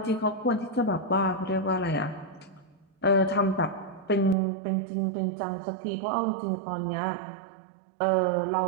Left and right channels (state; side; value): drops out; left; at 4.4 s